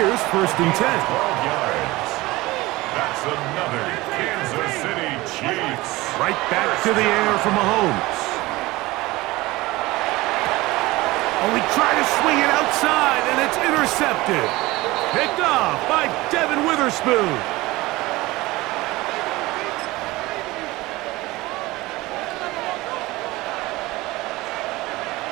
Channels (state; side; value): quieter; left; 20.0 dB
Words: first and 10. 12 yards. That's another Kansas City Chiefs. Right back to the air for Mahomes. Oh, he tried to swing it outside, and it's intercepted. Picked off by Devin Witherspoon.